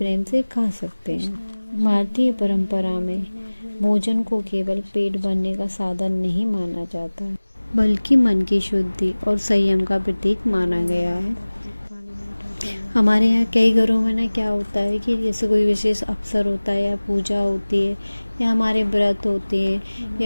से खा सकते हैं। भारतीय परंपरा में भोजन को केवल पेट भरने का साधन नहीं माना जाता है, बल्कि मन की शुद्धि और संयम का प्रतीक माना गया है। हमारे यहाँ कई घरों में ना क्या होता है कि जैसे कोई विशेष अवसर होता है या पूजा होती है या हमारे व्रत होते हैं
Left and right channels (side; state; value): both; inverted; correlation -1.00